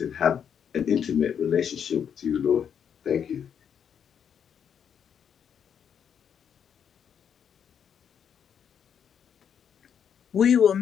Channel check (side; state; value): right; quieter; 8.0 dB